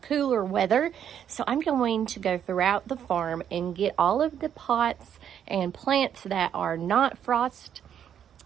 weather, so I'm going to go throughout the farm and get all of the pots and plants that are not frost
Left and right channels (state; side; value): quieter; left; 9.2 dB